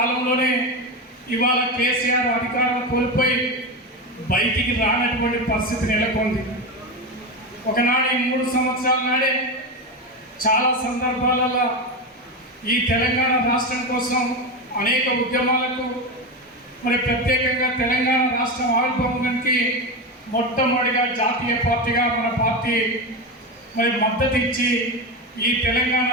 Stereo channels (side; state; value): both; normal; correlation 0.17